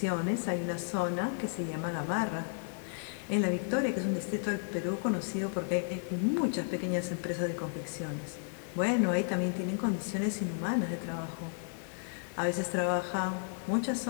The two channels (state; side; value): silent; right; digital silence